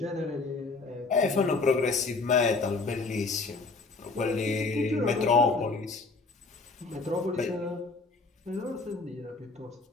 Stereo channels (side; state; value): right; quieter; 3.9 dB